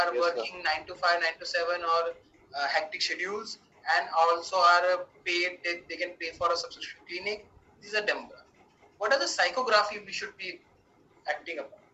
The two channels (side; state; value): both; identical; correlation 1.00